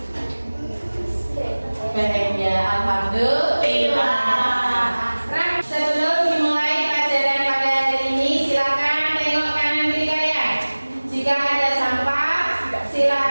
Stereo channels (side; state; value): both; inverted; correlation -1.00